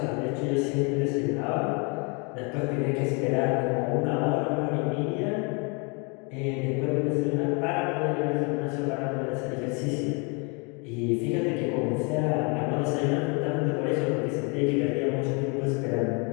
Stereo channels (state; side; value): quieter; right; 32.8 dB